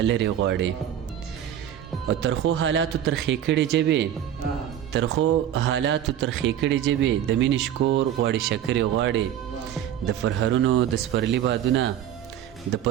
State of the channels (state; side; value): quieter; left; 10.4 dB